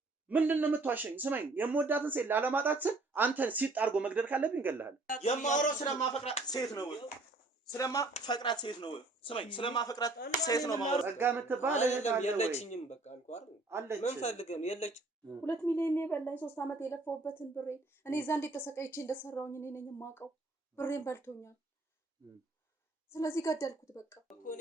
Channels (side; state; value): left; quieter; 3.2 dB